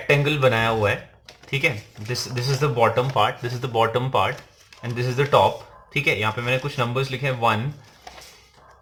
बनाया हुआ है. ठीक है, this is the bottom part, this is the bottom part and this is the top. ठीक है, यहाँ पे मैंने कुछ नंबर्स लिखे हैं 1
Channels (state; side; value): identical; both; correlation 1.00